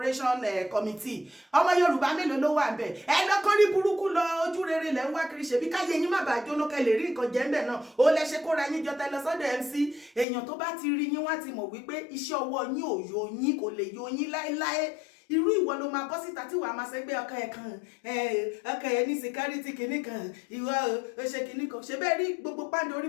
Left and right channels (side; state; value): right; drops out; at 10.2 s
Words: committee ọmọ Yorùbá mélòó ló wà ńbẹ̀ ẹ lọ́kàn rí burúkú lọ ojú rere lẹ́ ń wá kiri ṣebí káyé yín má bàa jóná kẹ́ lè rí nǹkan jẹ ńbẹ̀ náà ó lẹ ṣe kóra yín jọ tẹ lọ sọ́dọ̀ MC èèyàn tó bá ti rí yín wá ti mọ̀ wípé iṣẹ́ ọwọ́ yín ò yọ yín kò lè yọ yín láéláé irú ìwọ ló máa bọ́ síta tí wàá máa ṣẹgbẹ́ ọkọ ẹ̀ kan ọkọ ẹ̀ ní security kìíní kan ìwọ ó ṣe kìíní kan ṣe bẹ́ẹ̀ rí gbogbo pàǹdé orí